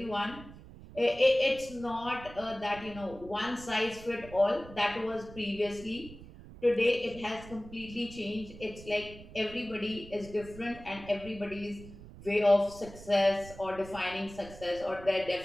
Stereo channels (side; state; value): right; noise; rumble, 16 dB below the sound